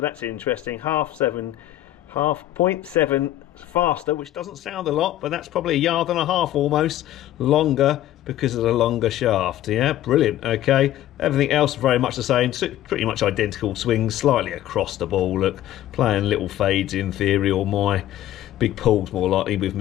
interesting. 0.7 faster, which doesn't sound a lot, but that's probably 1.5 yards almost longer because of the longer shaft. Yeah, brilliant. Okay, everything else very much the same, pretty much identical swings, slightly across the ball. Look, playing little fades in theory, or my big pulls more likely with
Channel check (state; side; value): quieter; right; 13.4 dB